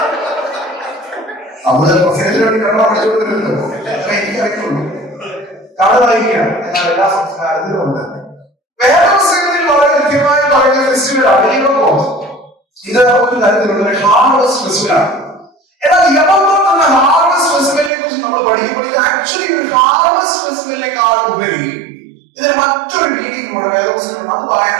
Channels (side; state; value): left; drops out; at 17.9 s